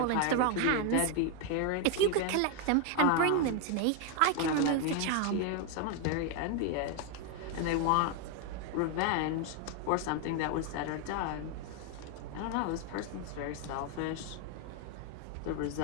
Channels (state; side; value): different; both; correlation 0.01